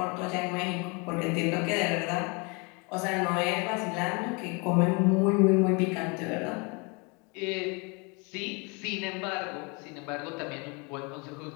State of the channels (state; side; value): quieter; right; 30.9 dB